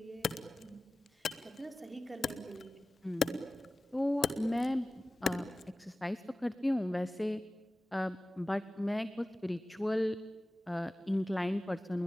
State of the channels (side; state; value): both; normal; correlation 0.96